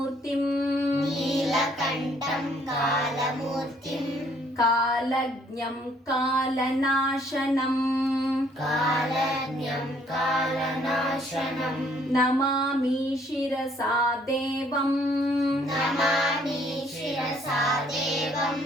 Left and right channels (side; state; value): both; normal; correlation 0.63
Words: ನೀಲಕಂಠಂ ಕಾಲಮೂರ್ತಿಂ, ಕಾಲಜ್ಞಂ ಕಾಲನಾಶನಂ, ಕಾಲಜ್ಞಂ ಕಾಲನಾಶನಂ, ನಮಾಮಿ ಶಿರಸಾ ದೇವಂ, ನಮಾಮಿ ಶಿರಸಾ ದೇವಂ,